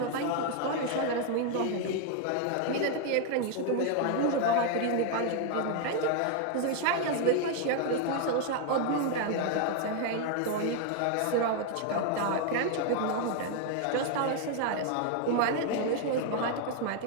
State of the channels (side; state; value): both; different; correlation 0.00